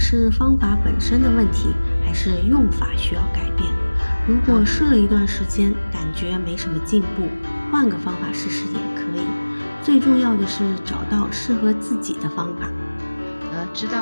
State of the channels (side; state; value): both; inverted; correlation -1.00